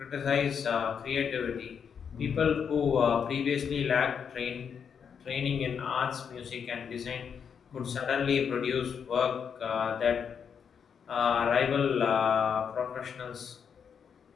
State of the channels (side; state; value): right; quieter; 7.1 dB